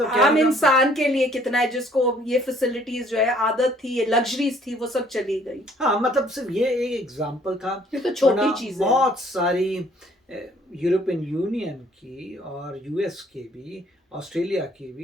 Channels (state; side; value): normal; both; correlation 0.60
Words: आम इंसान के लिए कितना है जिसको ये फैसिलिटीज जो है आदत थी, ये लग्जरीज थी, वो सब चली गई। हाँ, मतलब सिर्फ ये एक एग्जाम्पल था, ये तो छोटी चीज है। बहुत सारी यूरोपियन यूनियन की और यूएस की भी, ऑस्ट्रेलिया की